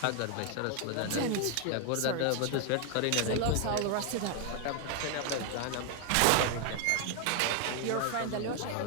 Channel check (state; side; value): different; both; correlation 0.01